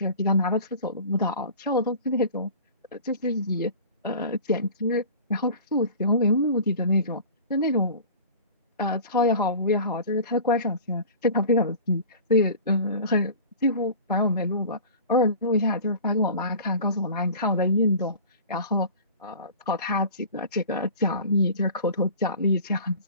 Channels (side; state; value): both; inverted; correlation -0.40